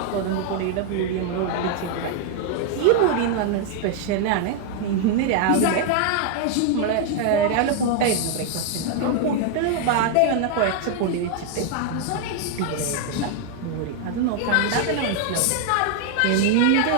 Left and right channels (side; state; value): both; different; correlation 0.00